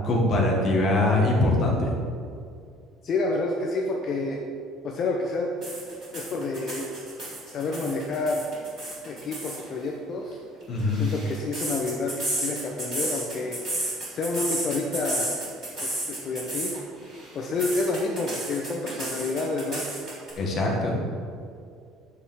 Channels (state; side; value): normal; both; correlation 0.55